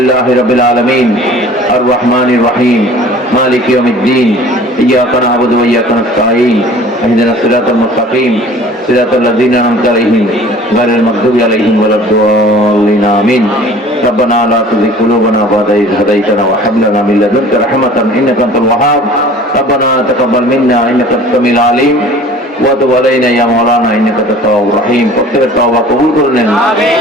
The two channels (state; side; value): normal; both; correlation 0.47